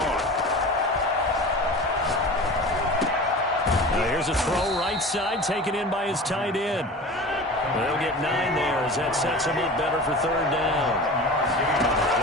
Now here's a throw right side, taken in by his tight end. They'll get 9 there as that sets him up better for 3rd down.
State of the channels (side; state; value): both; normal; correlation 0.35